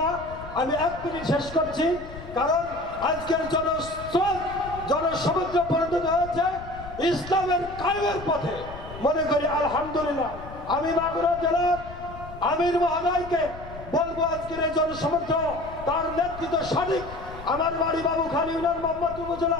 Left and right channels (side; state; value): left; noise; rumble, 14 dB below the sound